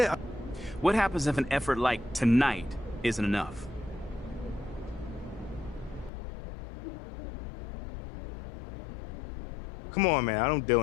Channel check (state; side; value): drops out; right; at 6.1 s